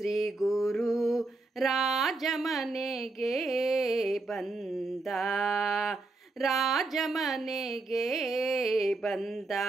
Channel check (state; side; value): quieter; left; 3.3 dB